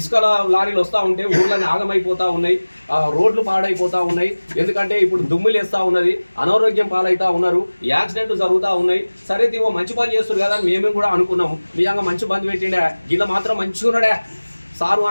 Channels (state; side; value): inverted; both; correlation -1.00